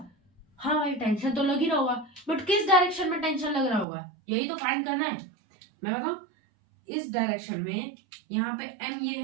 हाँ भाई, टेंशन तो लग ही रहा होगा, बट किस डायरेक्शन में टेंशन लग रहा होगा, यही तो फाइंड करना है। मैं बताऊं, इस डायरेक्शन में यहाँ पे m ये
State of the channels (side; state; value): left; drops out; at 3.9 s